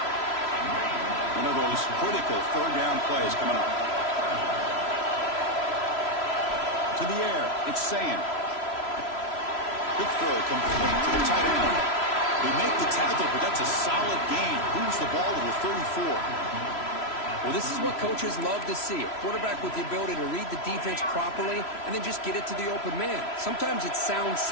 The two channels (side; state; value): right; late; 3.0 ms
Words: One of those critical 3rd down plays coming up. To the air, it's Sayin. Quick throw complete to the tight end. They make the tackle, but that's a solid gain. Moves the ball to the 34. Well, this is what coaches love to see. A quarterback with the ability to read the defense properly and then just get it to the open man. Sometimes it sounds